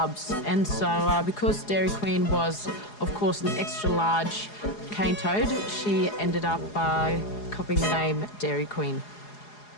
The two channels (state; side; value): late; right; 4.8 ms